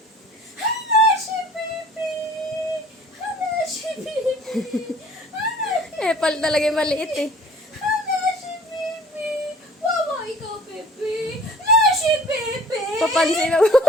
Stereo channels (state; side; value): normal; both; correlation 0.50